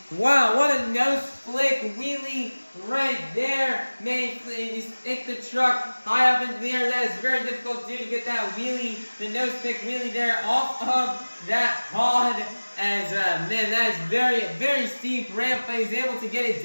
Wow, what a nose flick wheelie right there. Man, you stick the truck high up into the air. That is very difficult to do, to get that wheelie, the nose flick wheelie there off of that pod. As man, that is very, very steep ramp, but he's able to get it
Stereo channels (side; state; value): both; inverted; correlation -1.00